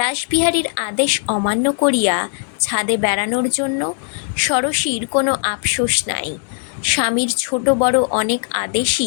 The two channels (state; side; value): silent; right; 61 dB below the other